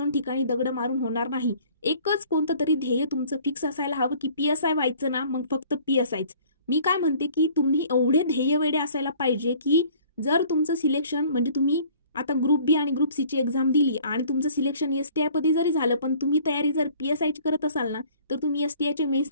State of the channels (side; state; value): both; inverted; correlation -0.53